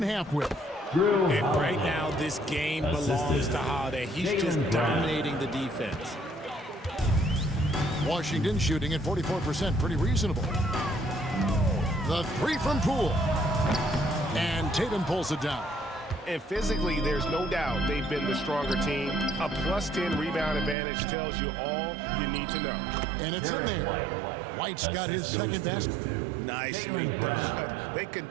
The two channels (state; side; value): drops out; left; at 20.8 s